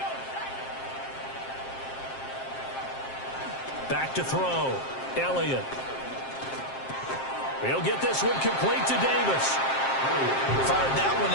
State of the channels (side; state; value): right; late; 7.5 ms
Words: Back to throw. Elliott. He'll get this one complete to Davis. Fired that one